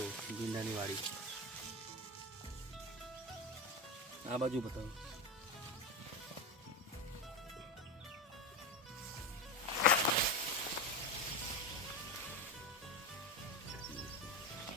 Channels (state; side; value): normal; both; correlation 0.17